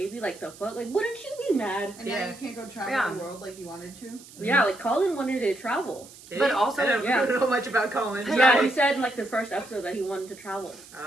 Like, the fuck? Like, wouldn't you be mad? And now you can't go travel Yeah. the world like you wanted to. Yeah, like Colin wanted to travel. But also- I don't Yeah. know much about Colin. Yeah, he said in like the first episode that he wanted to travel.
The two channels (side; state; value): right; noise; hiss, 20 dB below the sound